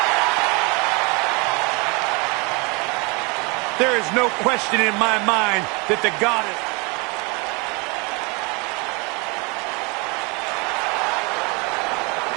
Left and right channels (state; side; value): quieter; left; 29.5 dB